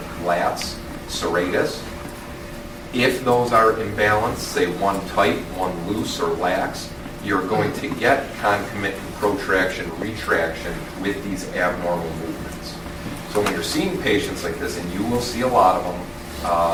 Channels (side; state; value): both; identical; correlation 1.00